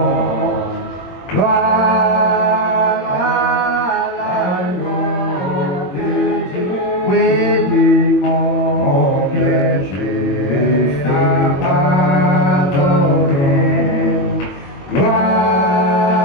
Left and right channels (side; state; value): right; late; 22 ms